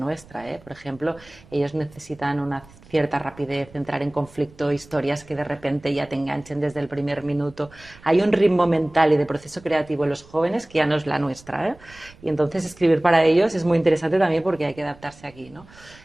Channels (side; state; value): right; noise; rumble, 24 dB below the sound